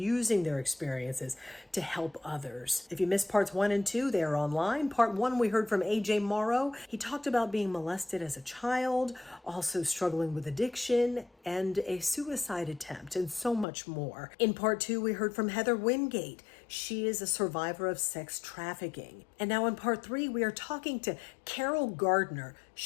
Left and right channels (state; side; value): drops out; right; at 13.7 s